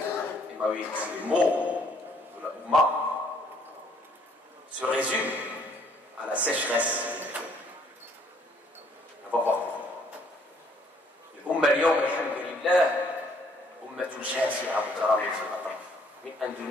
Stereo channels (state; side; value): normal; both; correlation 0.64